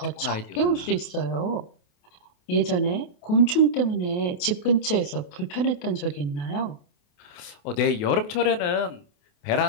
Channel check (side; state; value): right; late; 28 ms